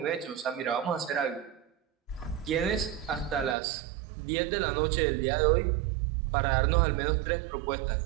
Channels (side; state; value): left; drops out; at 3.6 s